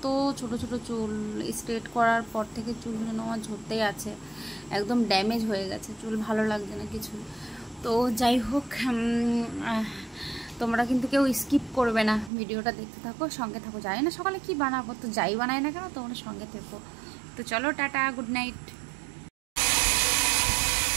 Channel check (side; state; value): left; drops out; at 12.3 s